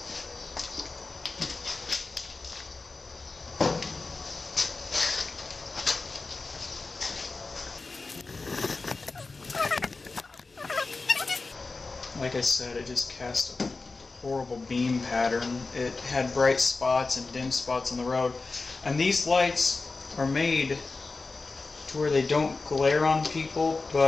Like I said, it just cast a horrible beam pattern. It had bright spots and dim spots on the road. And these lights are made to where they don't glare on people,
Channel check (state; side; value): quieter; right; 3.8 dB